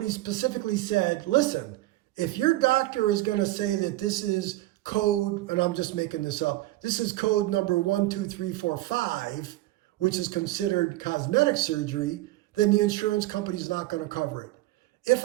specifically said, listen, if your doctor is going to say that this is code, and I'm just making this up, this is code number 12345, which is considered cosmetic surgery, then the insurance company is not going to cover it. If,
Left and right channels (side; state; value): left; quieter; 17.3 dB